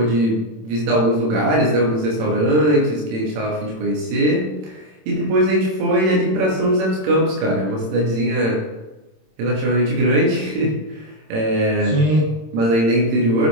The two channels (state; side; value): late; left; 27 ms